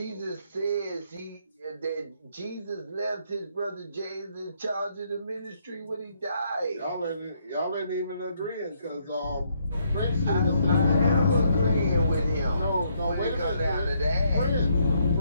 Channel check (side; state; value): both; inverted; correlation -0.72